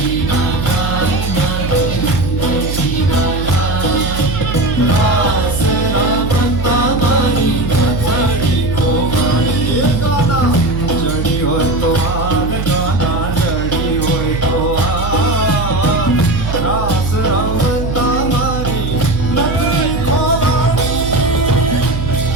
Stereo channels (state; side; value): noise; right; hum, 4 dB below the sound